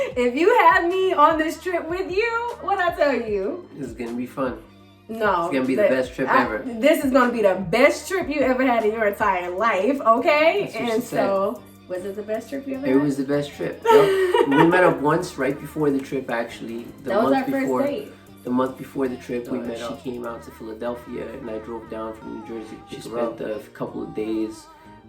if you had me on this trip with you, what'd I tell you? This is gonna be fun. No. It's gonna be the best trip ever. This is gonna be the best trip you ever had in your entire life, okay? That's what And she said. So, was it the best trip you ever had? It was the best trip. Yep. We met up once right before the trip, actually. That was our first date. The month before the trip, we met up. She came out to Philadelphia, and I drove down from New Jersey. She spent a couple of days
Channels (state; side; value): identical; both; correlation 1.00